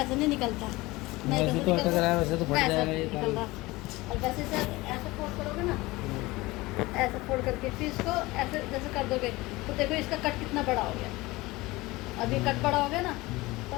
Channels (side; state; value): right; quieter; 20.8 dB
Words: नहीं निकलता, वैसे तो अटक रहा है, वैसे तो फट वैसे जाएगा ये निकल रहा। और जैसे ऐसे फोल्ड करोगे ना, ऐसे फोल्ड करके फिर इसको ऐसे जैसे कर दोगे तो देखो इसका कट कितना बड़ा हो गया, अब ये कट बड़ा हो गया ना,